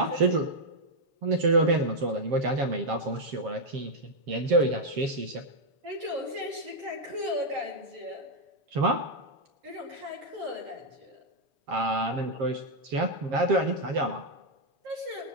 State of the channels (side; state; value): left; late; 7.5 ms